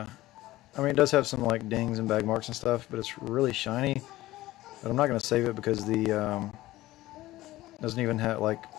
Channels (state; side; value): quieter; right; 16.9 dB